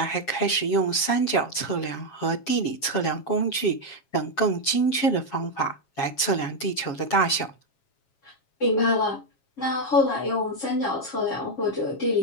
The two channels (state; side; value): late; right; 7.3 ms